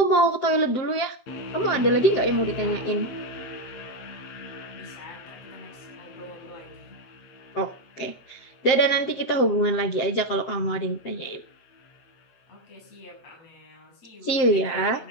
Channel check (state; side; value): late; right; 7.7 ms